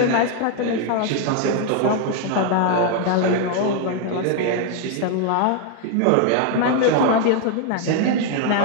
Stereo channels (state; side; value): different; both; correlation 0.00